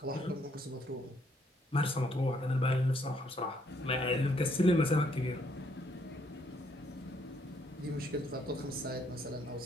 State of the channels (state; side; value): normal; both; correlation 0.70